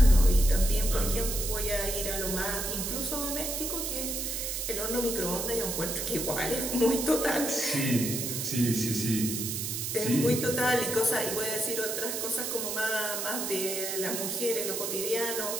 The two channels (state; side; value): noise; right; hiss, 3 dB below the sound